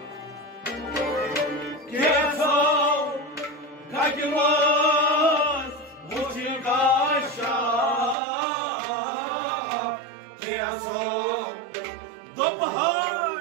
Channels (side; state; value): left; drops out; at 8.2 s